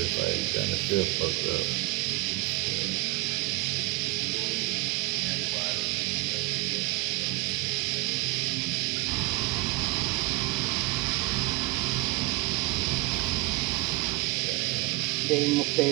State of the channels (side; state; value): left; quieter; 23.5 dB